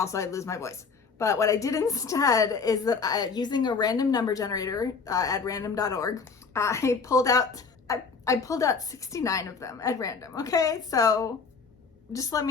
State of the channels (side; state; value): right; quieter; 5.1 dB